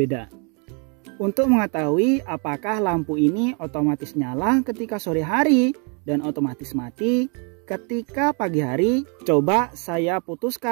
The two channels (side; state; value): left; quieter; 36.4 dB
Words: Untuk mengetahui apakah lampu ini otomatis nyala ketika sore hari dan otomatis mati ketika pagi hari, coba saya